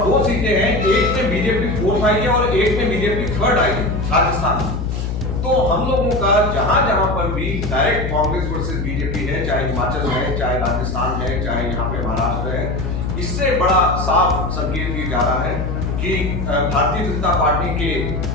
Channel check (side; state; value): left; noise; hum, 3 dB below the sound